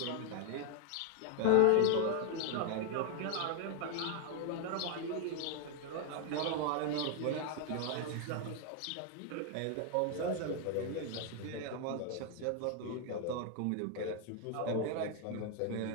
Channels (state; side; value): different; both; correlation 0.00